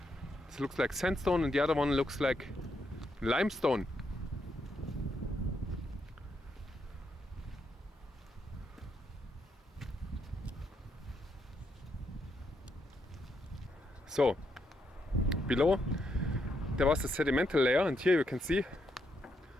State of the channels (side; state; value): both; normal; correlation 0.79